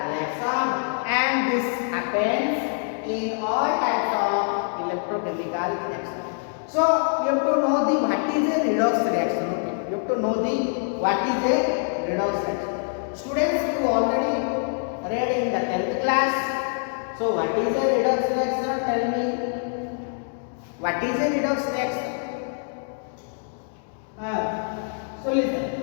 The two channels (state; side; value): silent; right; 61 dB below the other